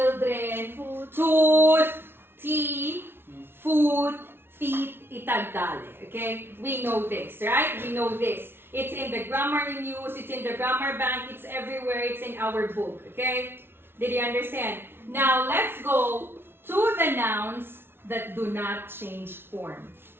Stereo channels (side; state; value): left; late; 0.11 ms